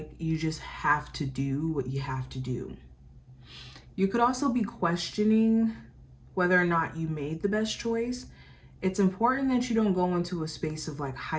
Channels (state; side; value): identical; both; correlation 1.00